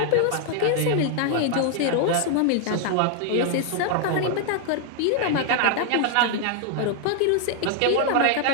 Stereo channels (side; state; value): both; different; correlation 0.00